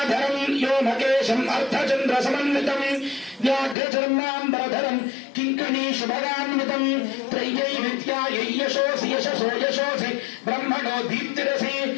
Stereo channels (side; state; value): right; drops out; at 3.8 s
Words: వ్యోమకేశం అర్ధచంద్ర సమన్వితం వ్యాఘ్రచర్మాంబరధరం కింకిణీ శుభగాన్వితం త్రయ్యై విద్యాయై యశోసి యశసో యశోసి బ్రహ్మణో దీప్తిరసి